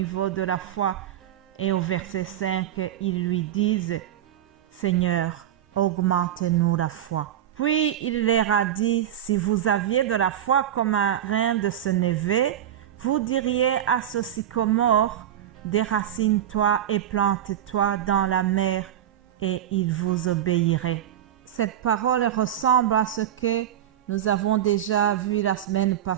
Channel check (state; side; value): quieter; left; 11.1 dB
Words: de la foi. Et au verset 5, ils lui disent, Seigneur, augmente-nous la foi. Puis il leur a dit, si vous aviez de la foi comme un grain de sénévé, vous diriez à ce sycomore, déracine-toi et plante-toi dans la mer, et il vous obéirait. Cette parole ressemble à ce que nous avons déjà vu la semaine